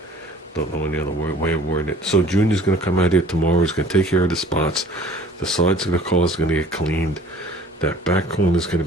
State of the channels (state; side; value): normal; both; correlation 0.50